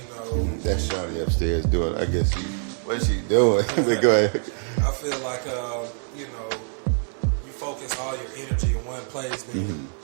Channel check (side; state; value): left; silent; 56 dB below the other